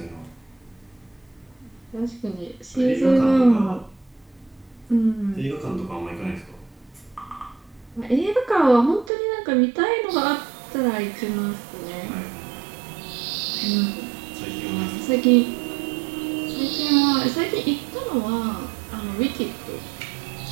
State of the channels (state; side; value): drops out; left; at 9.1 s